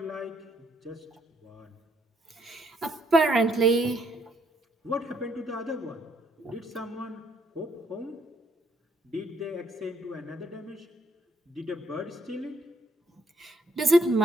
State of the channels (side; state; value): both; normal; correlation 0.70